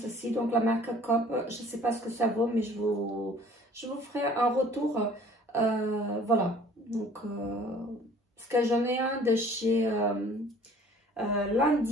donc la marque Coop, je sais pas ce que ça vaut, mais je vous ferai un retour, voilà. Donc, parce que j'en ai un de chez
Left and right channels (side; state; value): both; normal; correlation 0.52